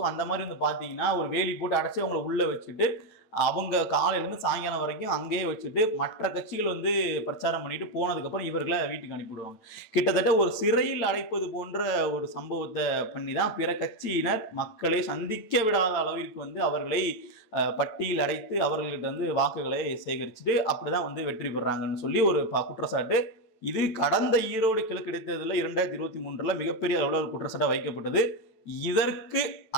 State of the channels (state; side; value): late; right; 9.1 ms